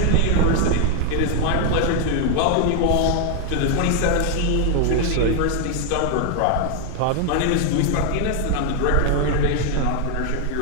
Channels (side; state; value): both; different; correlation 0.00